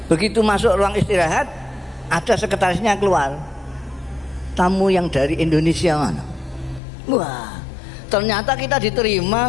Begitu masuk ruang istirahat, ada sekretarisnya keluar. Tamu yang dari Indonesia mana? Wah, ternyata kita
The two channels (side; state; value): right; drops out; at 6.8 s